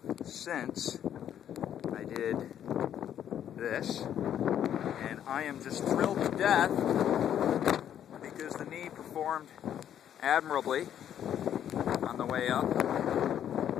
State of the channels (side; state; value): right; quieter; 10.0 dB